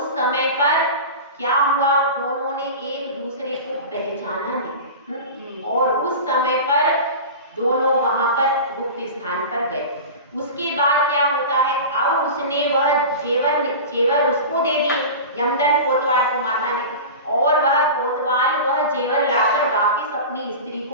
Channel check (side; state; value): both; inverted; correlation -0.30